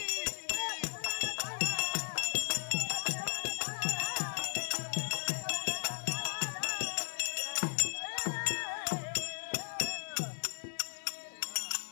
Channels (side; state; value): right; silent; digital silence